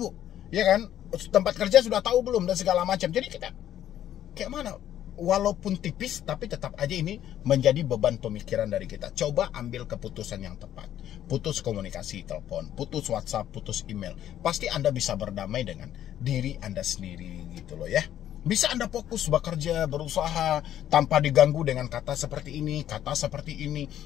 Ya kan, tempat kerja sudah tahu belum dan segala macam. Jadi kita kayak mana? Walaupun tipis, tapi tetap aja ini menjadi beban pemikiran dari kita. Coba ambil keputusan yang tepat. Putus komunikasi telepon, putus WhatsApp, putus email. Pasti Anda bisa berdamai dengan diri Anda sendiri gitu loh ya. Bisa Anda fokus bekerja, berusaha tanpa diganggu dengan kata seperti ini, kata seperti ini.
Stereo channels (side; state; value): right; quieter; 11.4 dB